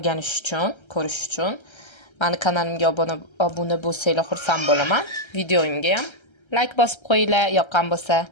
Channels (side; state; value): right; late; 1.3 ms